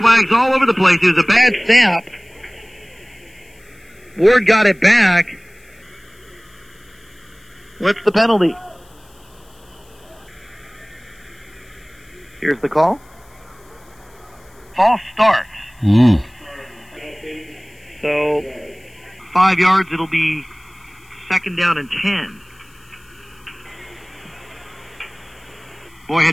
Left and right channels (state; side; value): noise; left; hiss, 29 dB below the sound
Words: all over the place. It was a bad snap. Ward got it back. What's the penalty? Here's the call. False start. So, 5 yards, it'll be 2nd down and 10. Boy,